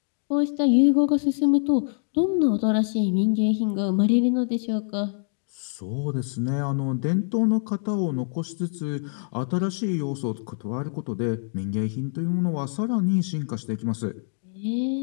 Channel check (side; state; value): right; silent; digital silence